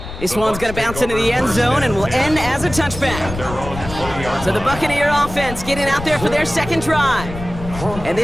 This one's going to bounce into the end zone and will end as a touchback. So the Buccaneer offense getting out there for their second drive. And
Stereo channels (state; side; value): noise; left; rumble, 10 dB below the sound